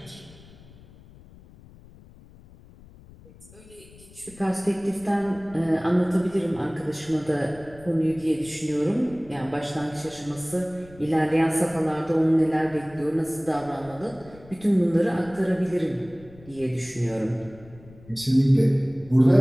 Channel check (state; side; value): noise; left; rumble, 22 dB below the sound